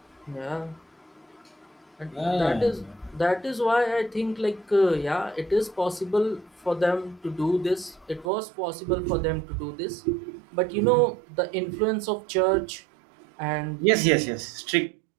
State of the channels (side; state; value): left; drops out; at 8.3 s